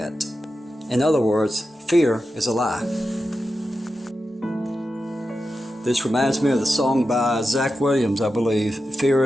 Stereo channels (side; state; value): both; normal; correlation 0.90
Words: In other words, fear is a lie. This reminds me of the song by Zach Williams, I believe,